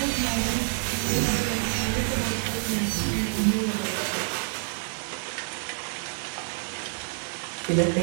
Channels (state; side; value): silent; left; digital silence